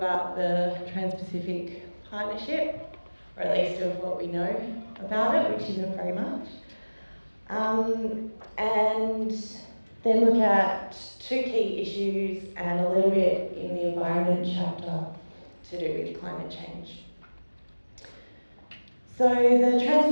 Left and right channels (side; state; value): both; inverted; correlation -1.00